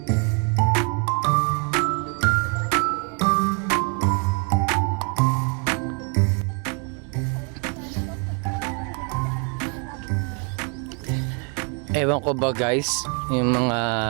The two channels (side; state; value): left; quieter; 37.1 dB